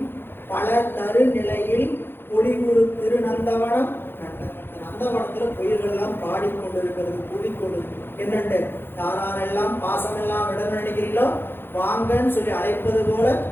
பல தரு நிலையில் பொலிவுறு திரு நந்தவனம் கண்டார். நந்தவனத்துல குயில்கள் எல்லாம் பாடிக்கொண்டிருக்கிறது, கூடிக்கொண்டு என்னண்டு யாரெல்லாம் பாசமெல்லாம் விட நினைக்கிறீங்களோ வாங்கன்னு சொல்லி அழைப்பது போல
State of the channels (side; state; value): right; late; 0.10 ms